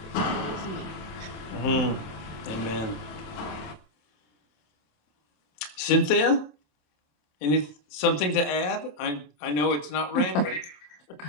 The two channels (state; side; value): late; right; 27 ms